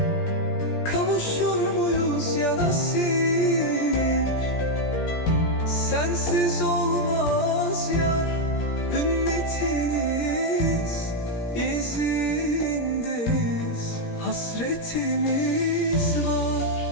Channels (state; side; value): late; right; 17 ms